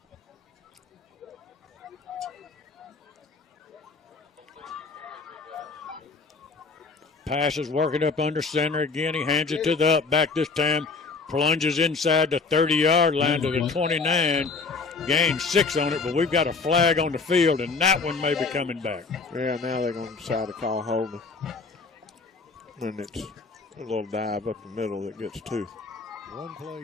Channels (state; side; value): quieter; right; 4.4 dB